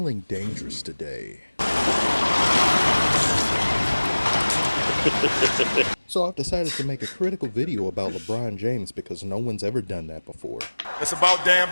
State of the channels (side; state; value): both; inverted; correlation -1.00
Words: dangerous today. So I've decided to make a critical video about LeBron James because no one's ever done that before. It's about damn